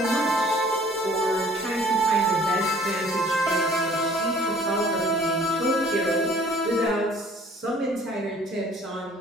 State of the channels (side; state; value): both; normal; correlation 0.54